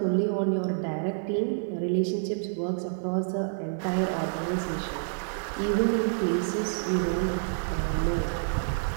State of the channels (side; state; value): left; silent; 58 dB below the other